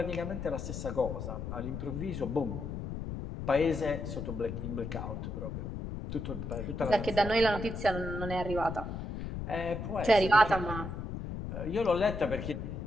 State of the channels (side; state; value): left; noise; rumble, 6 dB below the sound